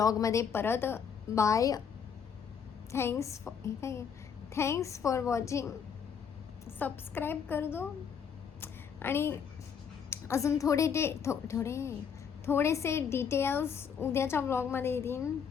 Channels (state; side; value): quieter; right; 7.0 dB